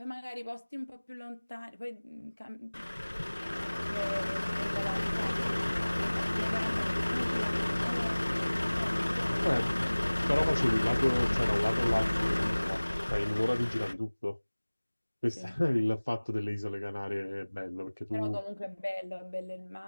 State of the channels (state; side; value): inverted; both; correlation -1.00